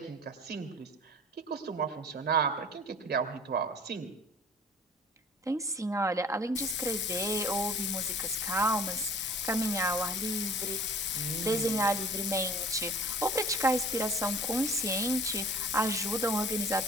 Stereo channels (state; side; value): normal; both; correlation 0.48